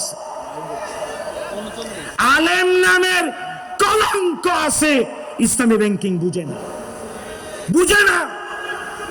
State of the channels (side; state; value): both; identical; correlation 1.00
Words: আলেম নামের কলঙ্ক আছে, ইসলামী ব্যাংকিং বুঝে না, বুঝে না,